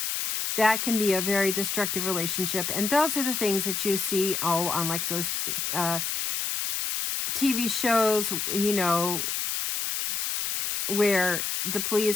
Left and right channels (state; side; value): noise; left; hiss, 1 dB below the sound